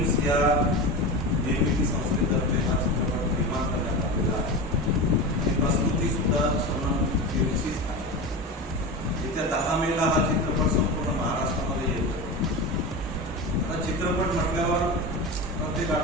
या निर्मिती संस्थेतर्फे हा चित्रपट निर्माण करण्यात आलेला आहे। ही प्रस्तुतीसुद्धा श्रमण फिल्मचीच आहे। येत्या 10 मेला हा चित्रपट संपूर्ण महाराष्ट्रामध्ये येतो। चित्रपट म्हटल्यावर प्रत्येक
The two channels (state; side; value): normal; both; correlation 0.25